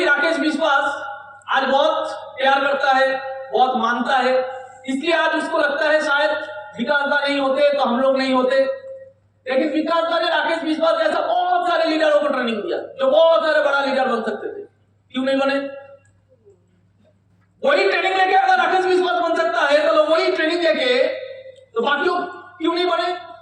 राकेश विश्वास आज बहुत प्यार करता है, बहुत मानता है, इसलिए आज उसको लगता है शायद विकास दा नहीं होते तो हम लोग नहीं होते। लेकिन विकास दा ने राकेश विश्वास जैसा बहुत सारे लीडरों को ट्रेनिंग दिया जो बहुत सारे बड़ा लीडर बन सकते थे, क्यों नहीं बने? वही ट्रेनिंग लेके अगर राकेश विश्वास बन सकता है तो लोग वही ट्रेनिंग लेके तो बाकी लोग क्यों नहीं बने?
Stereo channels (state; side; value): identical; both; correlation 1.00